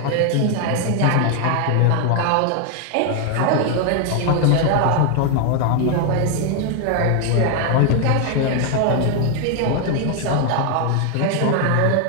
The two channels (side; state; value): both; different; correlation 0.00